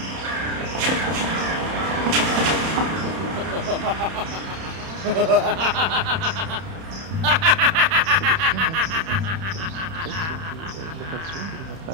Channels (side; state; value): left; late; 31 ms